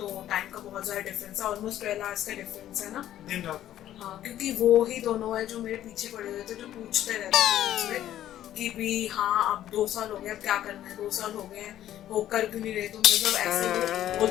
टाइम का बहुत ज़्यादा डिफरेंस है, ऑलमोस्ट 12 आवर्स का डिफरेंस है ना, दिन रात। हाँ क्योंकि वो ही दोनों है जो मेरे पीछे पड़े हुए थे, जो पूछते रहते थे मुझसे कि भी हाँ अब 2 साल हो गए, अब क्या करना है, 2 साल हो गए हैं, हो कर क्यों नहीं रहे, तो मतलब ऐसे वो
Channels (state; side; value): quieter; right; 12.2 dB